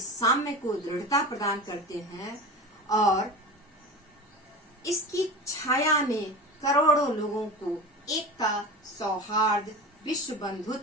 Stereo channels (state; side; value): normal; both; correlation 0.30